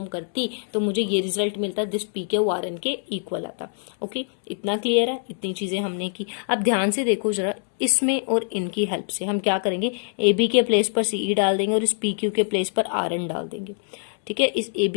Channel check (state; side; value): silent; right; 62 dB below the other